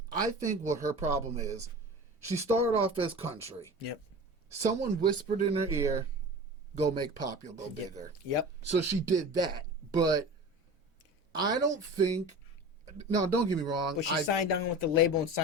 I think what her problem is, she started off as country. Yep. Someone whispered in her ear, go make pop, you'll go bigger. Yep. So she did that. But I don't think, no, don't get me wrong. But she signed on with the label and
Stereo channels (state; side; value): normal; both; correlation 0.34